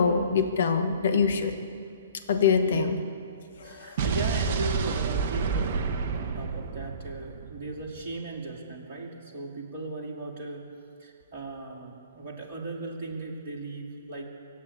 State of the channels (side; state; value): both; inverted; correlation -0.49